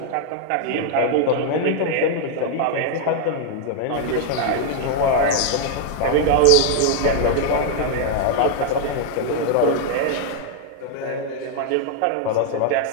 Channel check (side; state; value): both; different; correlation 0.00